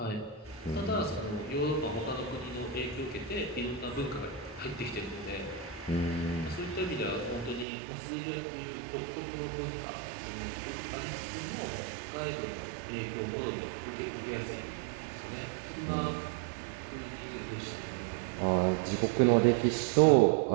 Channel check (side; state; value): left; drops out; at 7.7 s